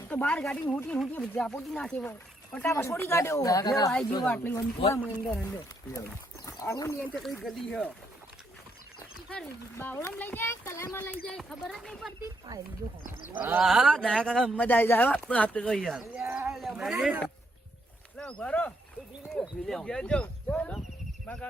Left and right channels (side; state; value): both; normal; correlation 0.75